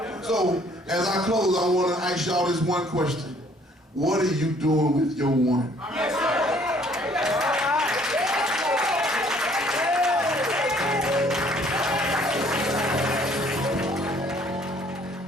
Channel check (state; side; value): normal; both; correlation 0.60